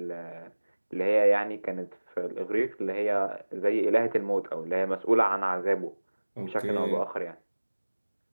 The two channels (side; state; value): both; inverted; correlation -1.00